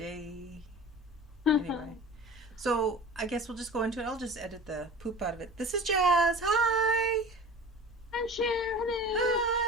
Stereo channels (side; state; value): both; normal; correlation 0.38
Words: Anyway. So I guess we'll just go into it. I'll just edit the poop out of it. This is Jas. Hi. I'm Sher. Hello.